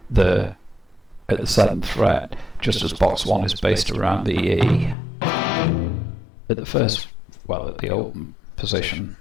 the 7th fret, just as box 1 is based around the E at the first, well, at the open position.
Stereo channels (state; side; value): drops out; right; at 5.0 s